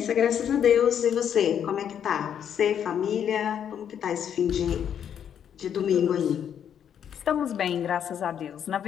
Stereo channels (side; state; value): right; quieter; 8.8 dB